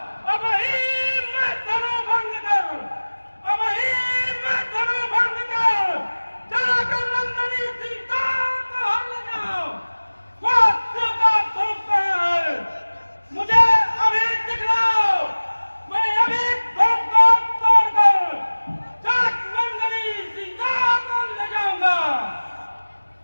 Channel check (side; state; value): both; inverted; correlation -1.00